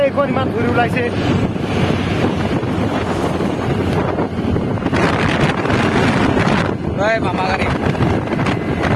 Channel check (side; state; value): both; identical; correlation 1.00